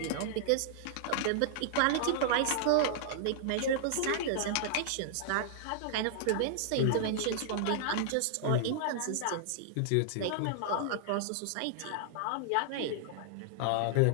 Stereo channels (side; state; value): both; different; correlation -0.01